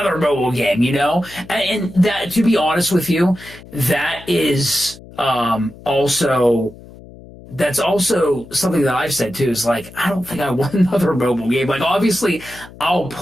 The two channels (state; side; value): noise; left; hum, 19 dB below the sound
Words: mobile game, you know? And that, to be honest with you, that is also, that's also something that I've said too, is like, I don't think I want another mobile game. Like, obviously, I'll